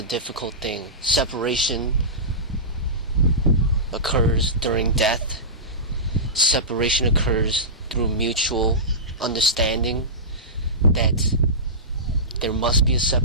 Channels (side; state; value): both; normal; correlation -0.19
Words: difficult thing. Separation occurs during death. Separation occurs through mutual understanding that there must be a